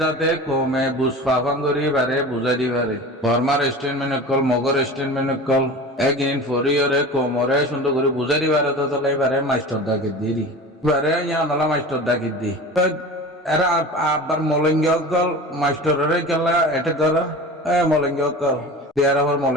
কমে বুঝ পাফাঙ্গরি বারে বুঝে দি পারে বর্মার স্টেন মেনে কল মগর স্টেন মেনে কল একদিন ফরিয়রে কোমরে সুন্দর করে বুঝে দিবারে তো চলে এবারে মাস্টার ডাকিত দি এবারে ইয়া নলা মাস্টার ডাকিত দি এরা আবার মলঙ্গি অকল মাস্টারের কেলা এটা কর মলঙ্গি অকল দেয়ার আবার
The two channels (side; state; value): both; normal; correlation 0.35